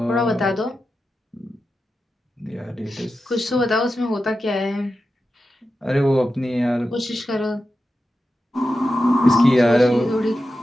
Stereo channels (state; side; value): normal; both; correlation 0.91